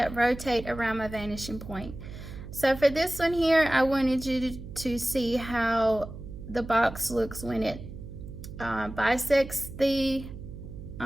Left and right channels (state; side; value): noise; right; hum, 12 dB below the sound